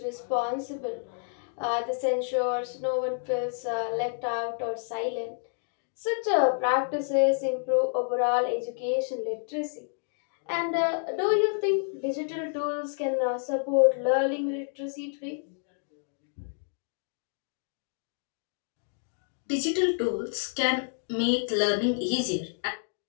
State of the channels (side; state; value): right; silent; digital silence